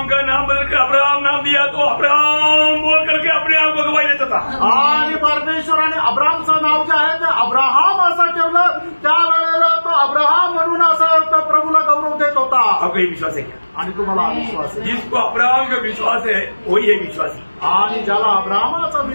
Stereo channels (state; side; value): inverted; both; correlation -1.00